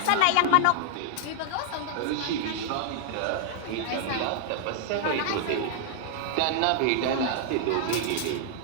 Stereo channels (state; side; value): different; both; correlation 0.00